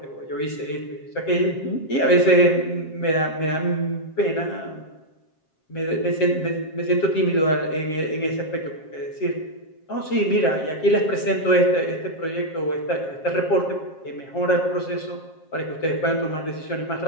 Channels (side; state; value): right; late; 7.5 ms